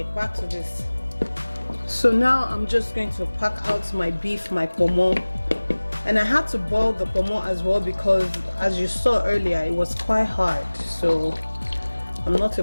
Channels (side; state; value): both; inverted; correlation -1.00